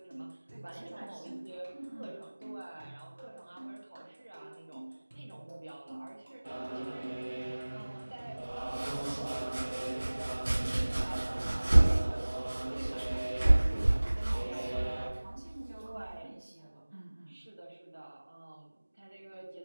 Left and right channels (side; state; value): both; inverted; correlation -1.00